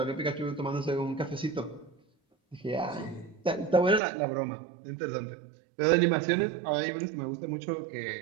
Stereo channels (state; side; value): drops out; left; at 4.0 s